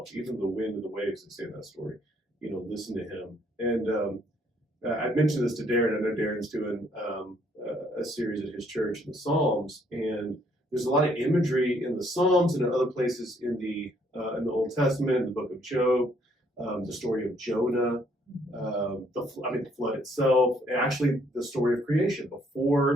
Even the wind and the waves that say in that story, listen to him. And I mentioned this to Darren. I know Darren's doing a series at his church in the Psalms, and there's a lot of imagery in the Psalms and in other places in the Old Testament, in the book of Job, the story of Jonah. The flood itself, and actually the story of creation.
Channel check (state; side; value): normal; both; correlation 0.67